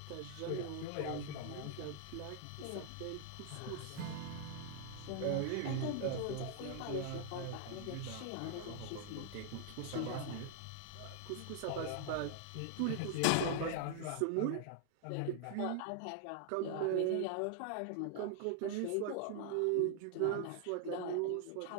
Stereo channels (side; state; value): both; different; correlation 0.00